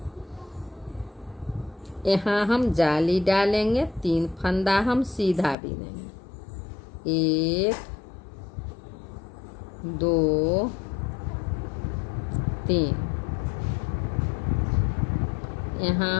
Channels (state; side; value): drops out; right; at 5.6 s